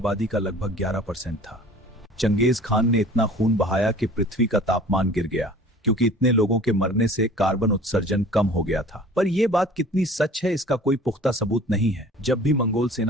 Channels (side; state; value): both; normal; correlation 0.47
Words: का लगभग 11% था। चंगेज खान ने इतना खून बहाया कि पृथ्वी का तापमान गिर गया, क्योंकि इतने लोगों के मरने से कार्बन उत्सर्जन कम हो गया था। पर यह बात कितनी सच है, इसका कोई पुख्ता सबूत नहीं है। जब भी मंगोल